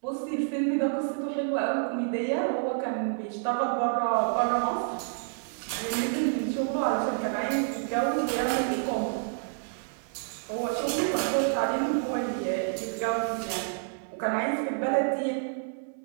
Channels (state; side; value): silent; left; digital silence